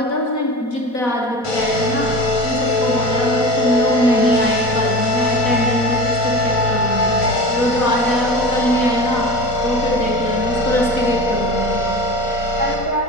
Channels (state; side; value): late; right; 4.1 ms